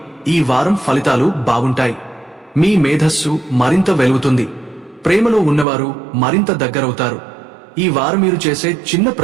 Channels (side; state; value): left; drops out; at 5.7 s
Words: ఈ వారం ఫలితాలు బాగుంటాయి. మీ మేధస్సు మరింత వెలుగుతుంది. ప్రేమలో ఉన్నవారు మరింత దగ్గరవుతారు. ఈ వారం మీరు చేసే చిన్న